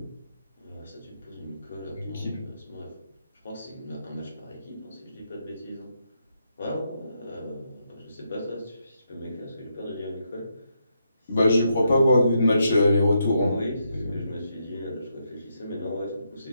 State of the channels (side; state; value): both; inverted; correlation -0.80